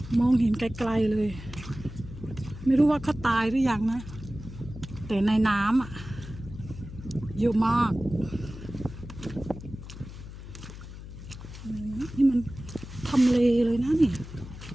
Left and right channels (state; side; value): noise; left; hum, 13 dB below the sound